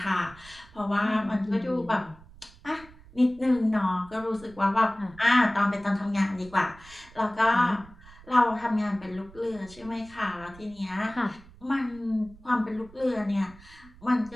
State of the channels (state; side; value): noise; right; rumble, 22 dB below the sound